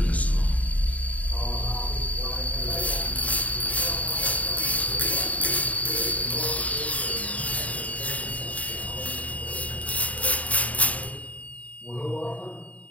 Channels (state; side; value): late; right; 0.069 ms